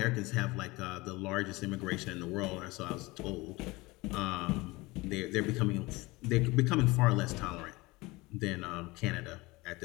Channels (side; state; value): right; quieter; 22.5 dB